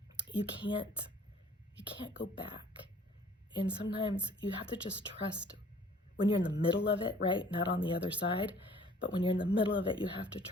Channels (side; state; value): both; normal; correlation 0.54